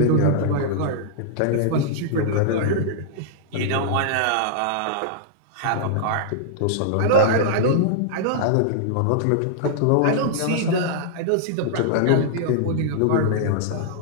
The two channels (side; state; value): both; different; correlation -0.02